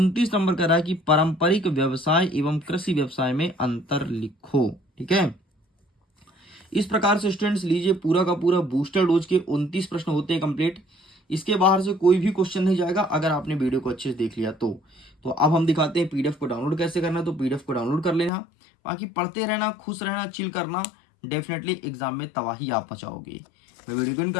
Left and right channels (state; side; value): drops out; right; at 18.3 s